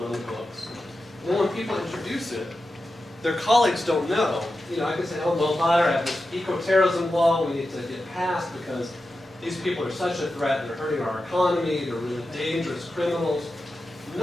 on the books. And then when people introduce it, their colleagues don't know. You know, I can say, oh, well, I have this eco-terrorism law we need to get passed because these people are such a threat, they're hurting our economy, they're really dangerous criminals.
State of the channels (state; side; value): normal; both; correlation 0.91